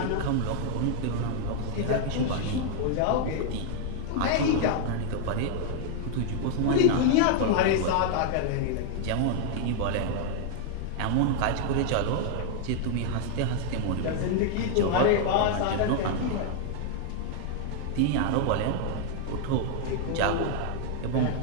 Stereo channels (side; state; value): both; different; correlation 0.00